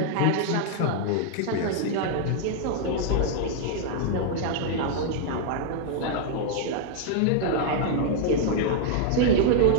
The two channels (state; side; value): different; both; correlation 0.00